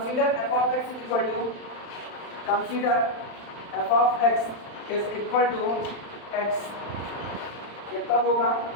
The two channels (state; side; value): late; right; 35 ms